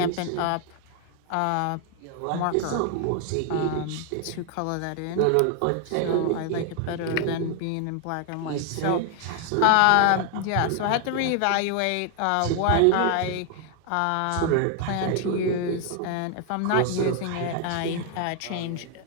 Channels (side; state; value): both; different; correlation 0.00